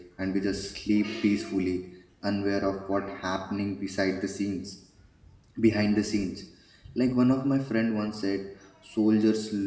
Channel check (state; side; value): identical; both; correlation 1.00